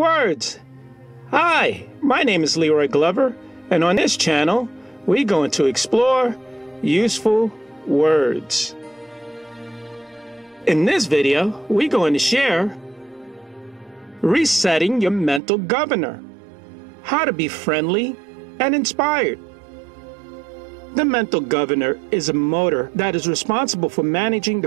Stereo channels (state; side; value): drops out; left; at 15.4 s